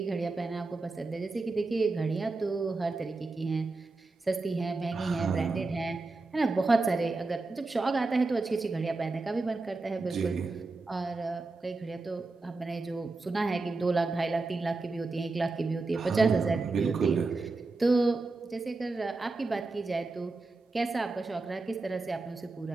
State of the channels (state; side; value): quieter; left; 3.5 dB